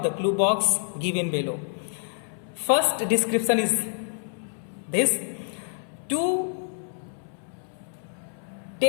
the clue box given below. First description is this: to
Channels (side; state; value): right; silent; 60 dB below the other